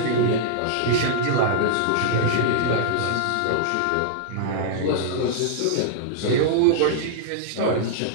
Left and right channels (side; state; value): both; different; correlation -0.02